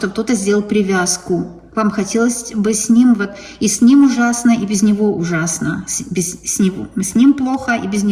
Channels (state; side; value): identical; both; correlation 1.00